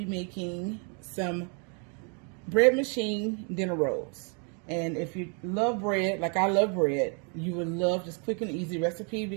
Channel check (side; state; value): left; quieter; 38.4 dB